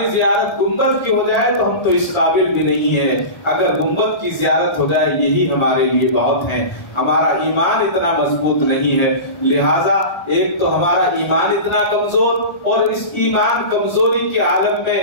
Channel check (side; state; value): right; late; 1.8 ms